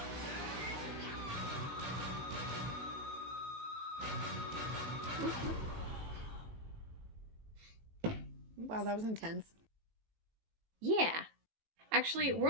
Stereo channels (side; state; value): left; late; 18 ms